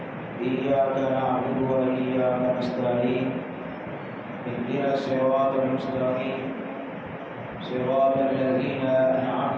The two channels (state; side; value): identical; both; correlation 1.00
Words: إياك نعبد وإياك نستعين اهدنا الصراط المستقيم صراط الذين